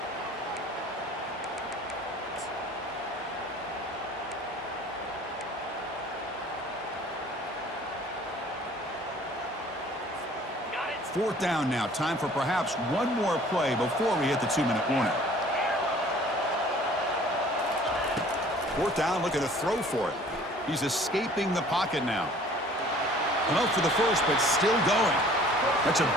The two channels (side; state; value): both; normal; correlation 0.52